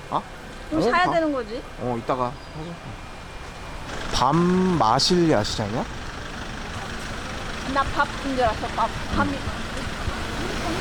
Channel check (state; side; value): identical; both; correlation 1.00